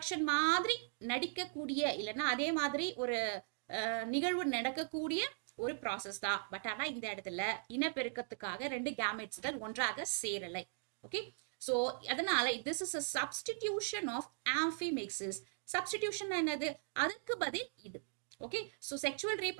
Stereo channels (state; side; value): silent; left; digital silence